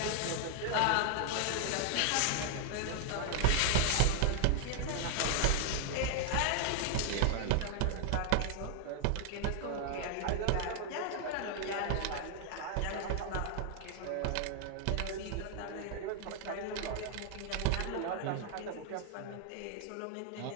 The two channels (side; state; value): both; different; correlation 0.00